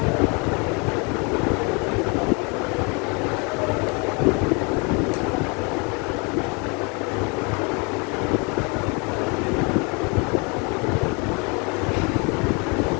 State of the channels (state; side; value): quieter; right; 31.6 dB